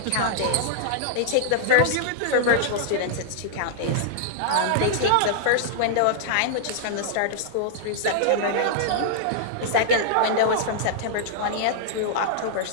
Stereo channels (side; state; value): both; different; correlation -0.02